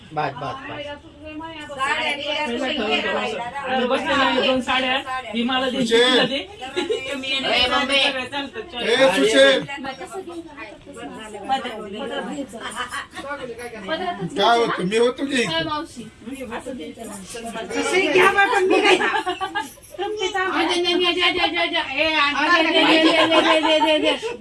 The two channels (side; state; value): both; identical; correlation 1.00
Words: बस बस बस आणि बसलेला आहे 2 साड्या. ही मला दे, तिला दे. काय होतं मी होतो की मावशी